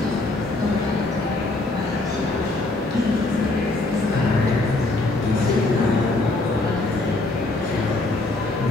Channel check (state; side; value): quieter; right; 3.0 dB